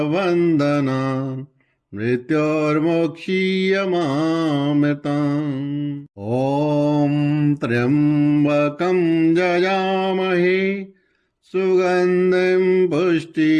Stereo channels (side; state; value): both; identical; correlation 1.00